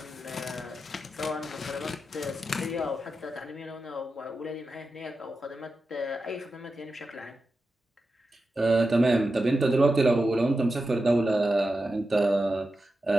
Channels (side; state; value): both; normal; correlation 0.91